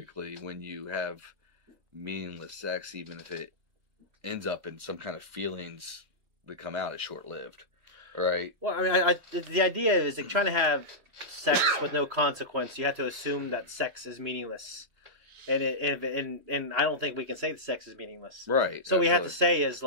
when you have meaningless sex, even if it ends up in some kind of feelings that come out, it's short-lived. Right? Well, I mean, the idea is like trying to have sex with no consequence. You have to assume that sex is meaningless. And I don't think we can say that sex is meaningless. Right. So we have to say is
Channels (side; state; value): left; late; 2.4 ms